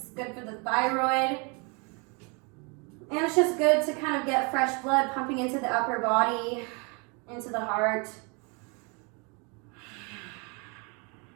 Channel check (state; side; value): quieter; left; 32.3 dB